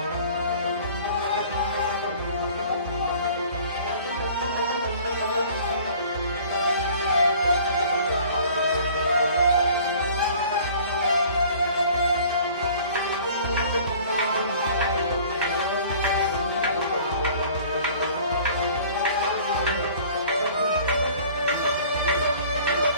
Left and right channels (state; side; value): inverted; both; correlation -0.50